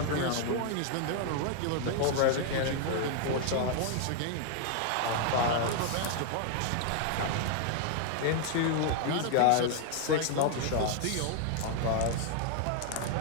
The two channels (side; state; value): both; different; correlation 0.00